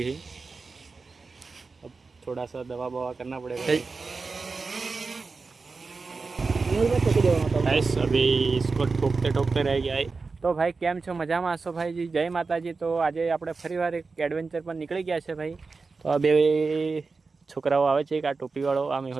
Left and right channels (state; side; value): quieter; left; 4.3 dB